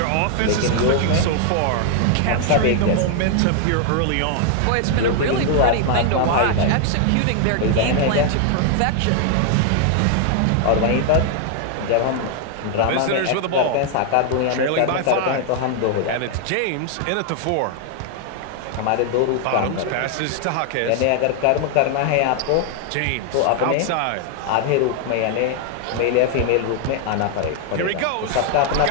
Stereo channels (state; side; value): different; both; correlation 0.00